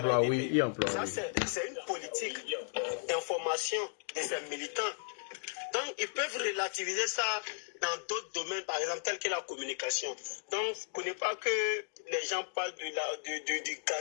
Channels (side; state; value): right; silent; digital silence